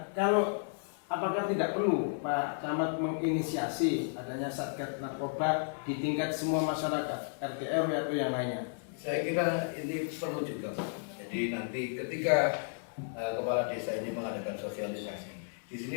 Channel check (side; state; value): right; silent; digital silence